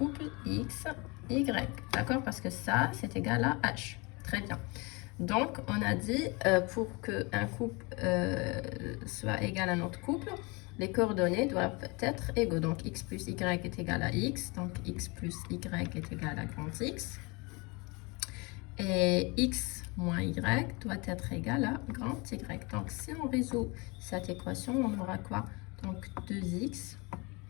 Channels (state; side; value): quieter; right; 27.6 dB